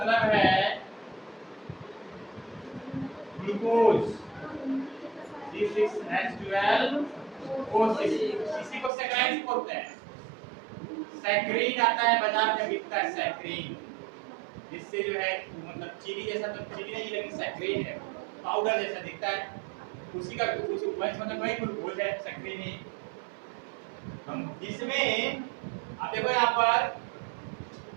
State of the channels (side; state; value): left; drops out; at 8.9 s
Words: है ग्लूकोज, C6H12O6, इसी को सैकेराइड्स बोलते हैं। सैकरीन आता है बाजार में, बिकता है सैकरीन, जिससे जो है मतलब चीनी जैसा, तो चीनी नहीं लेकिन सैकरीन है, पाउडर जैसा दिखता है, उसी का उस वही मतलब वही ग्लूकोज है सक्रिय नहीं। हम इसमें आप देखो यहाँ पर